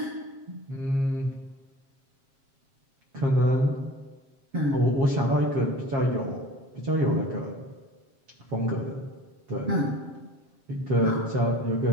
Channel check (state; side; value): late; left; 7.4 ms